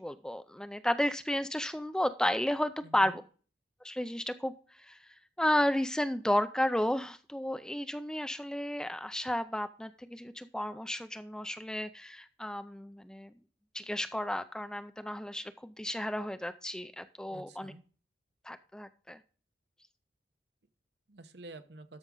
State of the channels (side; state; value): both; normal; correlation 0.94